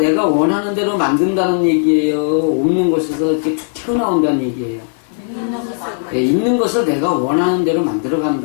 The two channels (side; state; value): right; silent; digital silence